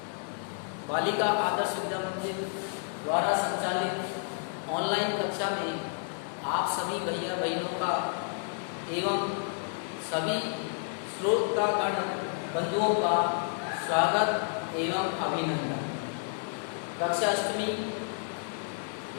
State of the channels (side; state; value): right; silent; 57 dB below the other